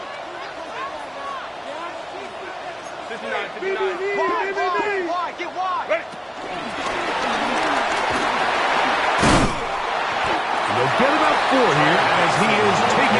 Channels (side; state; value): both; identical; correlation 1.00